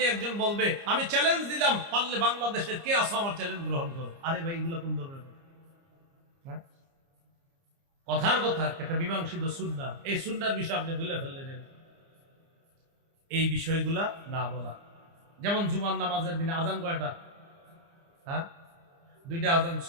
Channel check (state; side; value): late; left; 30 ms